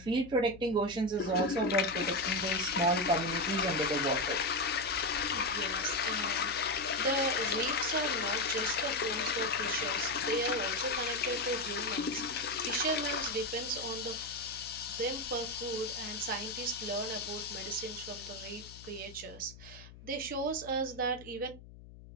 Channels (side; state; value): left; noise; hum, 18 dB below the sound